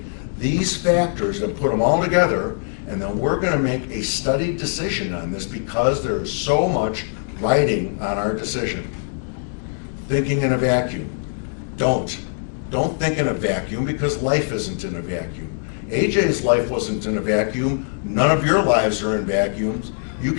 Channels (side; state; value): right; silent; 64 dB below the other